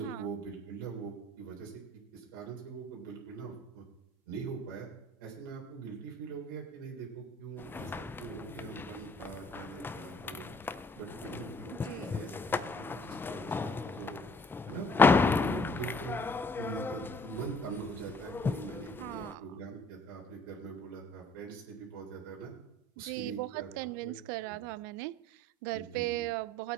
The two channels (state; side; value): normal; both; correlation 0.57